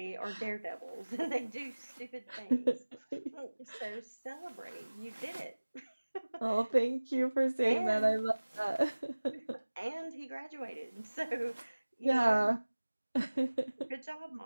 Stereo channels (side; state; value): both; inverted; correlation -1.00